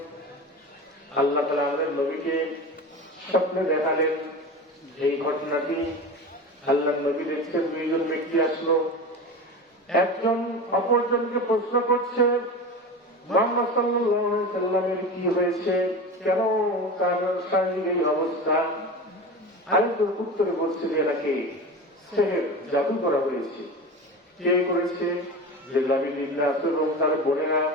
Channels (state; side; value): normal; both; correlation 0.28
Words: আল্লাহ তাআলা আমাদের নবীকে স্বপ্নে দেখালেন এই ঘটনাটি। আল্লাহ নবী দেখছেন দুইজন ব্যক্তি আসলো, একজন অপরজনকে প্রশ্ন করছে, মুহাম্মদ সাল্লাল্লাহু আলাইহি সাল্লামের কি হয়েছে, কেন তার শারীরিক এই অবস্থা? আরেকজন উত্তরে বলছে যে এনাকে সেহের, জাদু করা হয়েছে। কে করেছে? যে লাবিদ ইবনে আসরম তার বোনেরা।